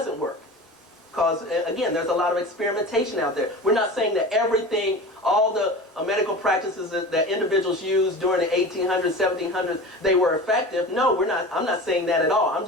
work. Because, again, there's a lot of experimentation out there. We're not saying that everything, all the medical practices that individuals used during the 1800s, 1700s, they were effective. No, we're not. I'm not saying that at all. I'm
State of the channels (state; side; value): normal; both; correlation 0.33